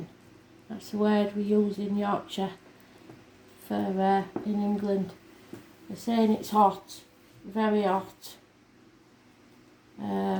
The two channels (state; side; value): identical; both; correlation 1.00